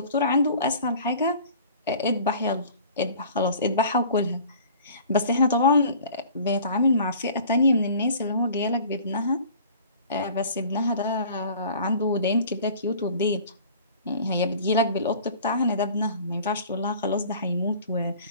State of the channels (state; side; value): inverted; both; correlation -0.47